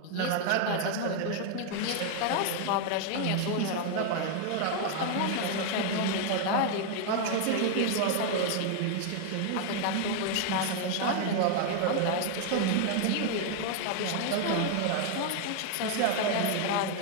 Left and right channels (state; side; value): different; both; correlation 0.00